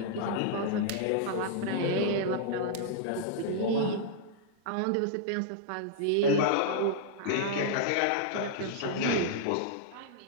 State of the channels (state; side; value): different; both; correlation -0.02